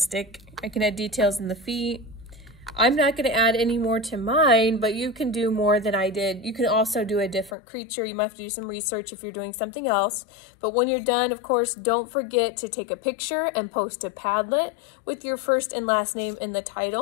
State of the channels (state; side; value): drops out; right; at 7.5 s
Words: I can add details in the feet. I'm not going to add any more to mine, but you can do more than I did. You can also do a different creature. You might have to do some research if you're doing something else. But when you're done, of course, don't forget to take a picture and post to Padlet with your first and last name in the